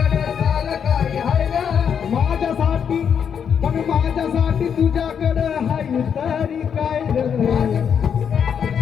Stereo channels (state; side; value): quieter; right; 7.6 dB